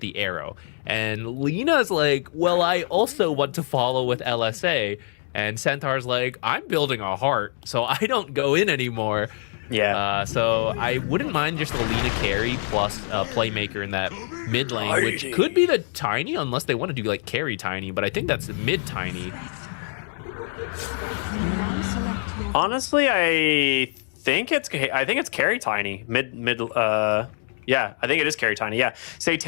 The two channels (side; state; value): right; silent; 62 dB below the other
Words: arrow. And Lina's like, well, I also want to follow with LSA. And Centaur's like, I'm building a heart, so I don't go in anymore. Yeah. So I wouldn't mind just a Lina carry plus a playmaker in that mid lane, which could be the Tiny, unless they want to do like carry Tiny, but I think that's mid Tiny. Honestly, I think it's carry Tiny. Yeah, I think it is carry Tiny. Yeah.